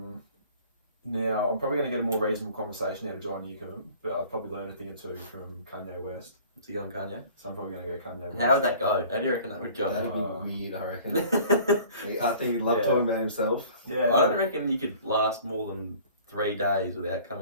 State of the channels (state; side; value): inverted; both; correlation -0.49